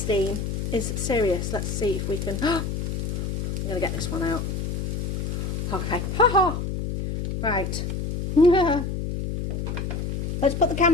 is serious. Let's see if we can... I'm going to get this one out. Okay. Ha-ha! Right. Let's put the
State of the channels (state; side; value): noise; left; hum, 2 dB below the sound